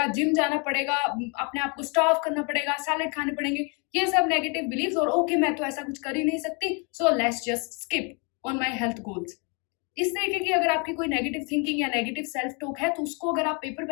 जिम जाना पड़ेगा, अपने आप को स्टाफ करना पड़ेगा, सैलेड खाने पड़ेंगे। ये सब नेगेटिव बिलीव्स, और ओके मैं तो ऐसा कुछ कर ही नहीं सकती, so let's just skip on my health goals. इस तरीके की अगर आपकी कोई नेगेटिव थिंकिंग या नेगेटिव सेल्फ टॉक है, तो उसको अगर आप पेपर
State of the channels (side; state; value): right; quieter; 33.9 dB